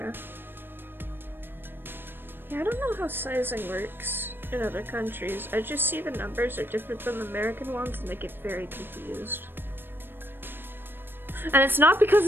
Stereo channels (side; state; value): left; late; 0.098 ms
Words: Yeah, I don't know how sizing works in other countries. I just see the numbers are different than the American ones and I get very confused. And it's not because